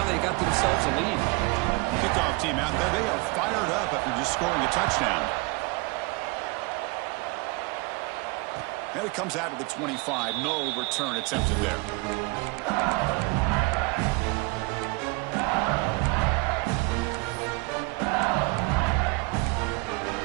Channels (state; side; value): quieter; left; 27.2 dB